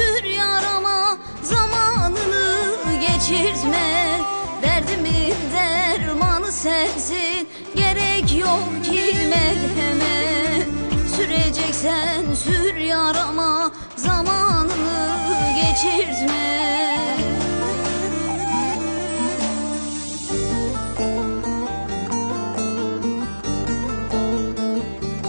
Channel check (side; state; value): both; inverted; correlation -1.00